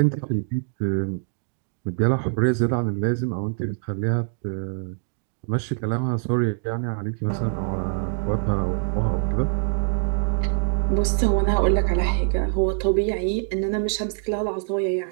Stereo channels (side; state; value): left; silent; digital silence